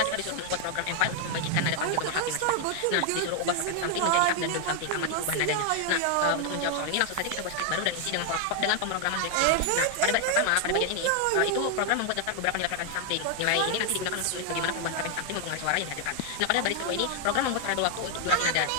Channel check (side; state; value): both; different; correlation 0.00